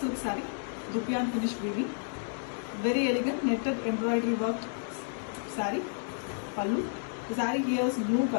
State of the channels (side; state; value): right; silent; digital silence